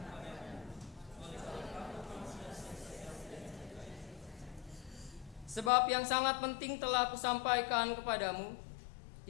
Sebab yang sangat penting telah kusampaikan kepadamu,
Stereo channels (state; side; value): drops out; right; at 5.7 s